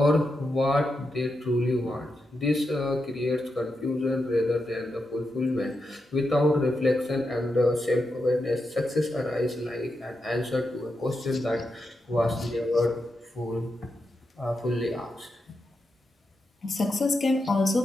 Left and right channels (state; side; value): normal; both; correlation 0.86